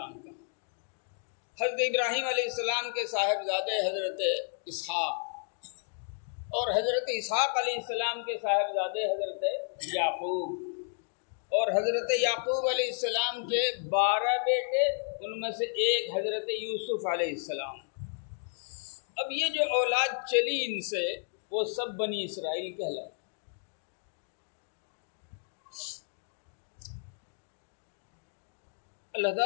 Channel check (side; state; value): right; silent; digital silence